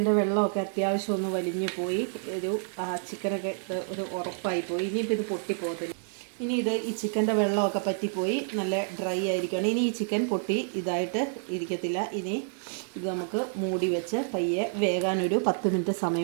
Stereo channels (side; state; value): left; silent; digital silence